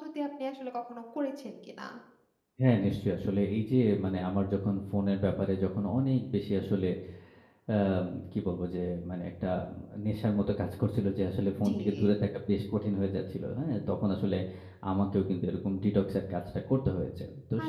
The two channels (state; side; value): identical; both; correlation 1.00